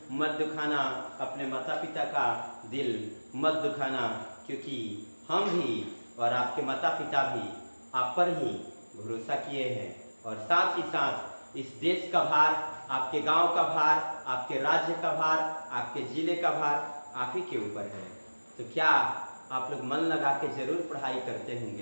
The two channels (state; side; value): inverted; both; correlation -1.00